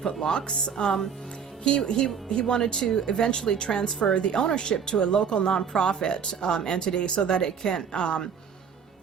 locks. He wanted to eventually transfer the ownership to a local nonprofit entity so that it can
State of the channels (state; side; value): quieter; left; 7.0 dB